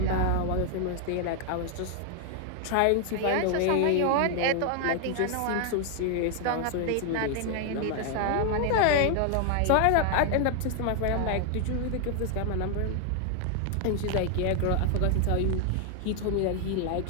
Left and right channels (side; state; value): both; different; correlation 0.00